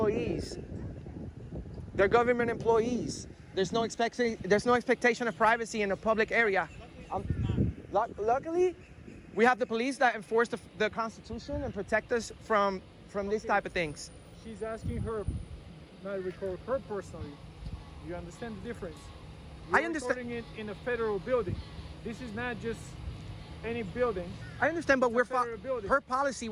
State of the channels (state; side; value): identical; both; correlation 1.00